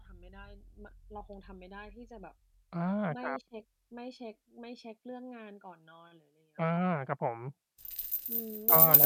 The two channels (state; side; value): identical; both; correlation 1.00